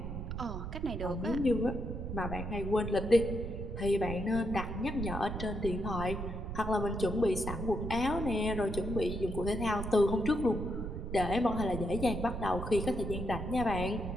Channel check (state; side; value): noise; right; rumble, 5 dB below the sound